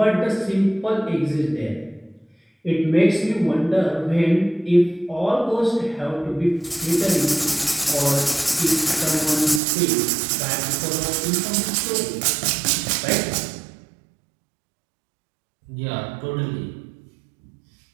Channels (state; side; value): drops out; left; at 9.6 s